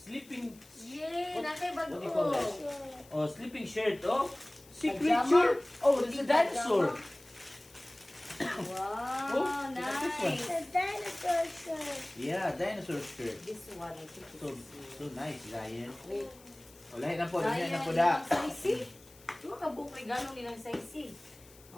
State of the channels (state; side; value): noise; left; hiss, 24 dB below the sound